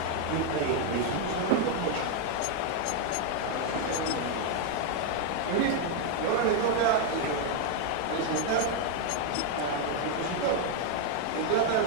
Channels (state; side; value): different; both; correlation 0.01